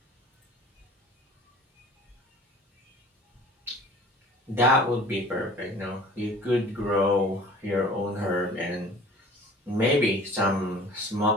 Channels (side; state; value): both; normal; correlation 0.46